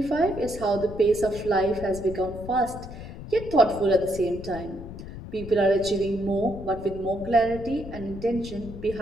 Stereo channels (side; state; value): left; noise; rumble, 12 dB below the sound